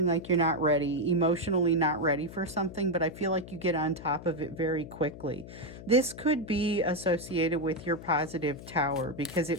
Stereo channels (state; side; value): noise; left; hum, 14 dB below the sound